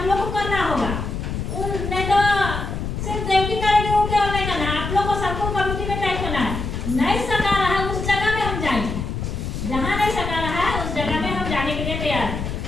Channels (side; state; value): left; noise; rumble, 4 dB below the sound